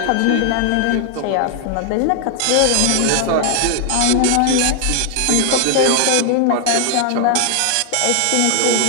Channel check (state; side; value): different; both; correlation 0.00